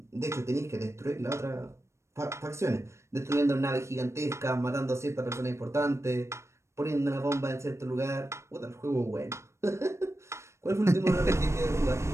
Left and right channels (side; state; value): left; late; 0.13 ms